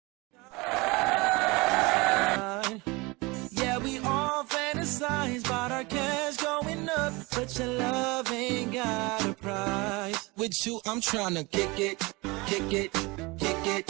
Yeah, we all fantasize about our cash going up, but your love ain't got a price. With you, I'm tryna kick it, kick it, kick it.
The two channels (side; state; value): left; quieter; 24.8 dB